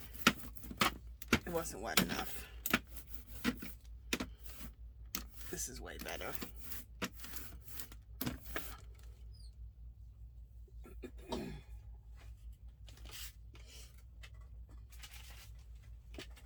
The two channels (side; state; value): both; identical; correlation 1.00